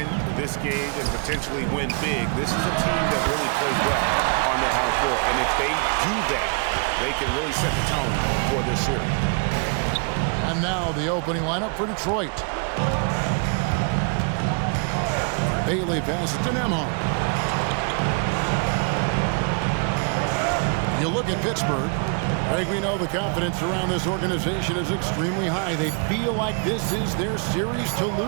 this game and potentially win big, this is a team that really plays well on their home floor. And if they do that, they can really set the tone for this series. And now the opening lineup for Detroit. Bailey passes to Nembhard. You look at Pittsburgh. Greg, we know the confidence around this organization is extremely high. They feel like this is their series to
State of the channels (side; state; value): left; quieter; 38.7 dB